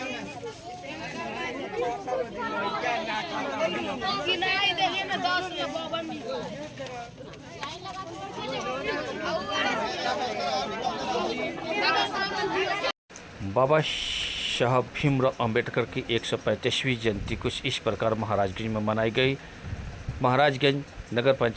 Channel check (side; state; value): both; identical; correlation 1.00